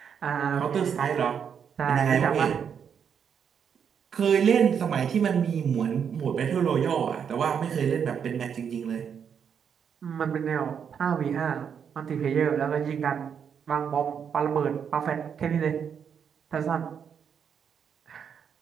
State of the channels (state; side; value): quieter; left; 7.5 dB